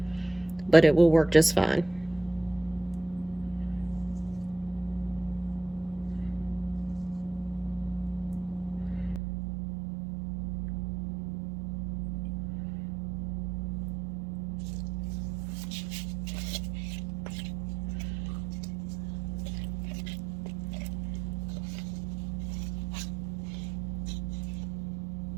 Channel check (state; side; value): drops out; left; at 9.2 s